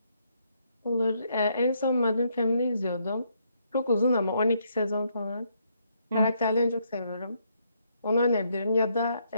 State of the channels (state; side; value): inverted; both; correlation -0.74